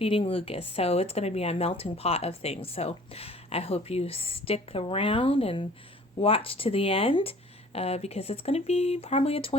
Lucas. So it's going to be a melting pot of things. So I hope you stick around and watch to the end because it's going to be probably a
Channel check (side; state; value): both; normal; correlation 0.50